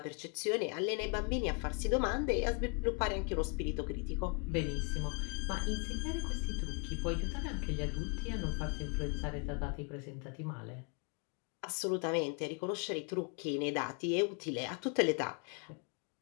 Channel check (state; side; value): quieter; right; 33.7 dB